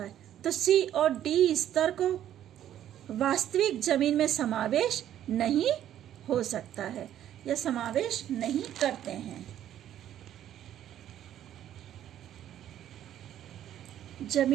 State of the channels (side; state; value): left; quieter; 11.3 dB